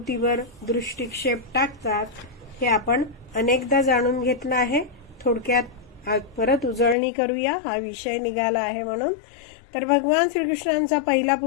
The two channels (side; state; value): right; drops out; at 7.0 s